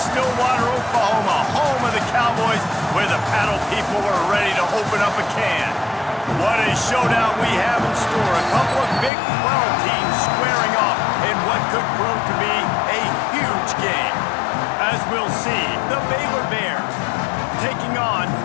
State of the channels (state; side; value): drops out; right; at 9.1 s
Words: Oklahoma, home of the Cowboys, where the paddle people are ready to open up a can. What a showdown we have in store. A couple of Big 12 teams squaring off in what could prove to be a huge game. As we'll see, the Baylor Bears taking on